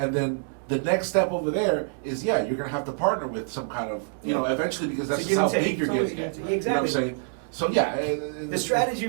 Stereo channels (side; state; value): left; silent; digital silence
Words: then the next step over there is you're gonna have to partner with some kind of eventually, because that's To just give how and take. big you're It's always getting. a give and At, take. You know what I'm Exactly. saying? So yeah, The strategy